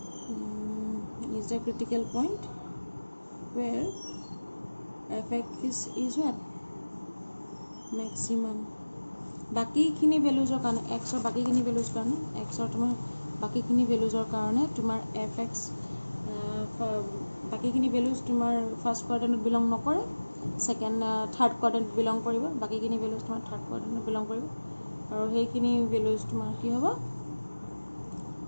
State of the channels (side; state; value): both; inverted; correlation -1.00